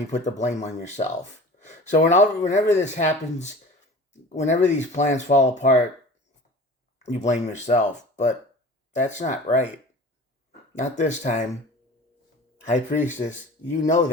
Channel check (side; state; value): both; normal; correlation 0.40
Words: put the blame on yourself. So whenever this happens, whenever these plans fall apart, you blame yourself. But that's not right. Not this time. High Priestess, you know